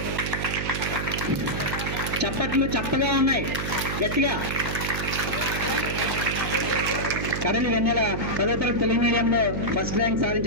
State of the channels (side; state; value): right; noise; hum, 3 dB below the sound